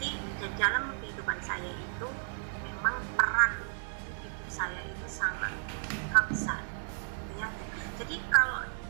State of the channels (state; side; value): silent; left; digital silence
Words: dalam kehidupan saya itu memang peran ibu saya itu sangat besar ya. Jadi kalau